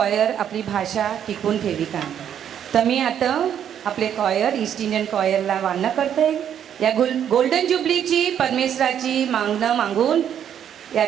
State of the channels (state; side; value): quieter; left; 9.3 dB